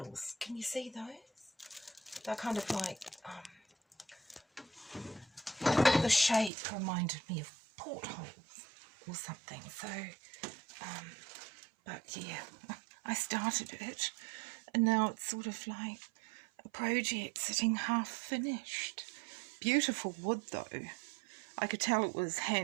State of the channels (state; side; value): drops out; left; at 6.5 s